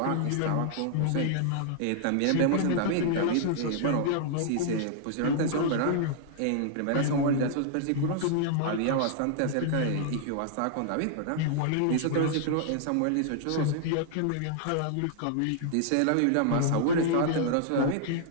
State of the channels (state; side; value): different; both; correlation -0.01